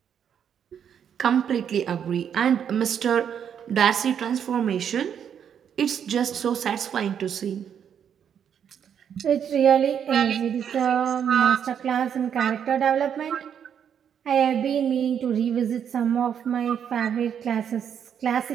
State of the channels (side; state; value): left; quieter; 8.3 dB